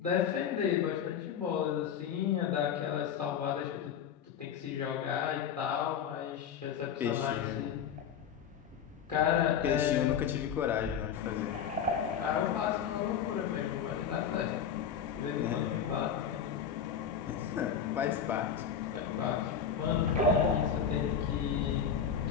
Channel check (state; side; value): quieter; right; 7.8 dB